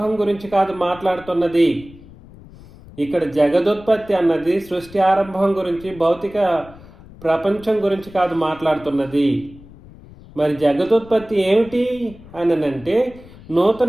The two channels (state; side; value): noise; left; rumble, 20 dB below the sound